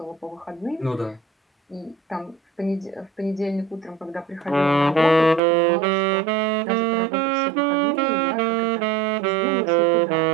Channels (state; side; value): drops out; left; at 5.4 s